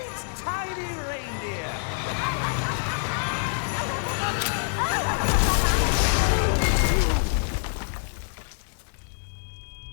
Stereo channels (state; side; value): silent; right; 61 dB below the other